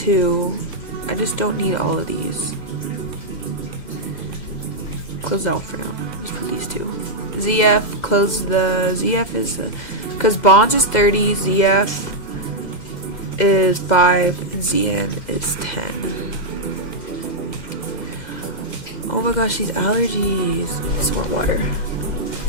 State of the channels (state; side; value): late; right; 2.0 ms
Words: I just don't need all of these. Close out for now. Just put these 2. ZF, close the ZF is the, because bonds is 30, ZF is 5, and ZN is 10. Oh my gosh, these allergies. Some more water.